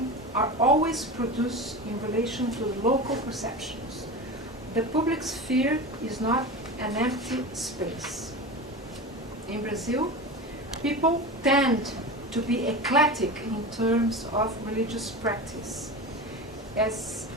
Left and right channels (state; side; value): normal; both; correlation 0.27